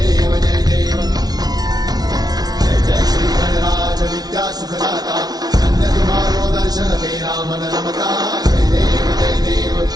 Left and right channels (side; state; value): left; late; 0.19 ms